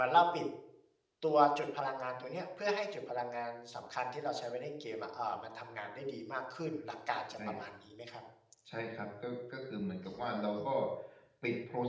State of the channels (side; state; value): both; identical; correlation 1.00